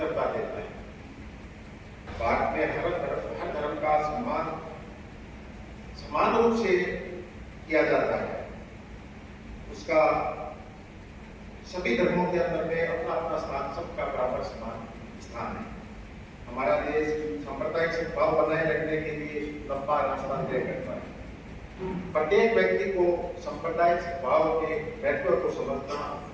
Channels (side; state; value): both; identical; correlation 1.00